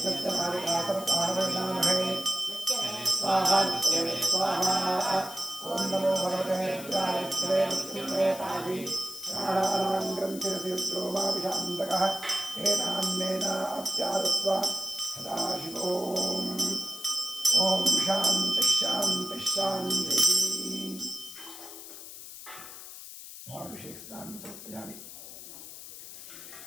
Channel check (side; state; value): left; noise; hiss, 13 dB below the sound